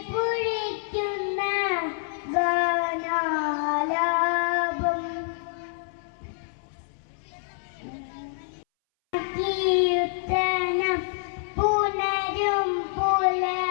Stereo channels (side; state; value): right; silent; 60 dB below the other